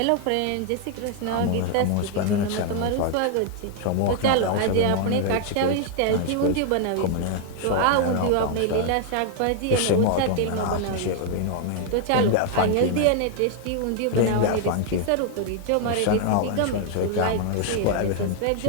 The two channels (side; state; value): both; different; correlation 0.00